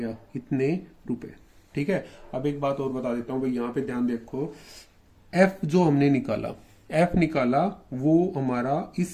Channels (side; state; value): both; identical; correlation 1.00